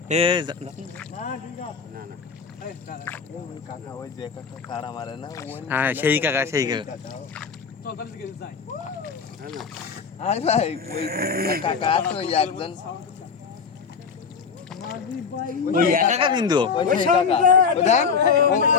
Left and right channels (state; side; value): quieter; right; 5.8 dB